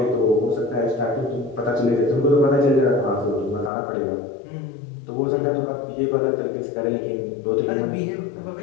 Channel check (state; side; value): drops out; right; at 3.7 s